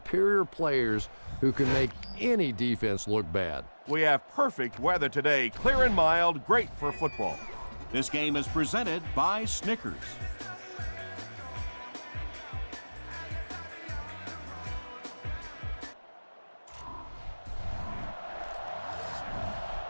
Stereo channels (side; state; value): both; inverted; correlation -1.00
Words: players who can make any defense look bad. We have perfect weather today, clear and mild, great for football. This game is presented by Snickers.